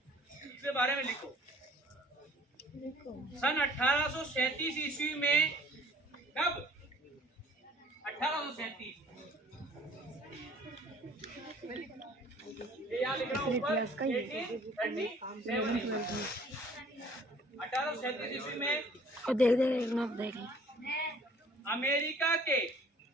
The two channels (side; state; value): both; normal; correlation 0.54